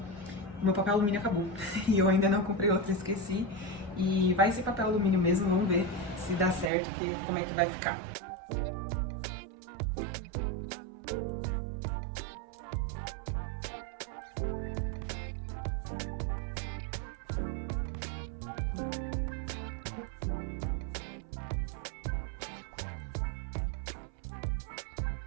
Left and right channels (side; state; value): left; drops out; at 6.7 s